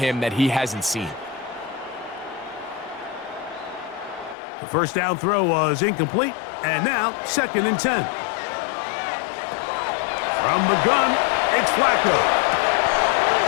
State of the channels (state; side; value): drops out; right; at 4.4 s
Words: that he hasn't seen. The first down throw was incomplete, and now 2nd and 10. From the gun, it's Flacco.